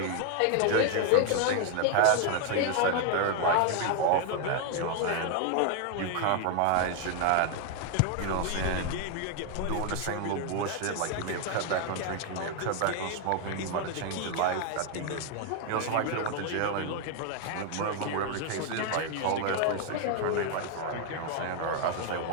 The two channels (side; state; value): both; different; correlation 0.01